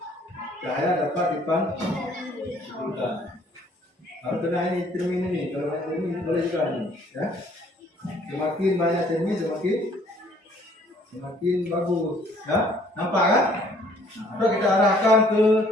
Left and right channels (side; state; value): both; normal; correlation 0.60